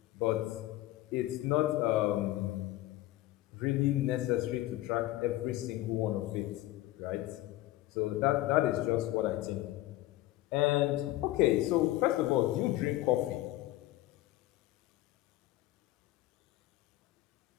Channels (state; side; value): quieter; right; 16.2 dB